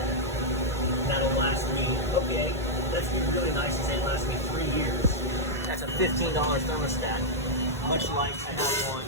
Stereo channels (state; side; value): normal; both; correlation -0.04